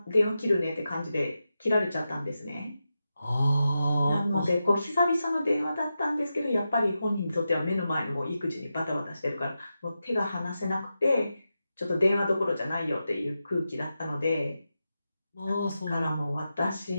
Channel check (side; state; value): both; inverted; correlation -0.90